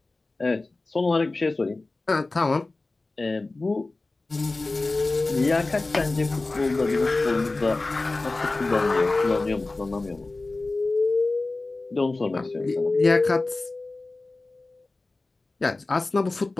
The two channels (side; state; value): right; quieter; 3.2 dB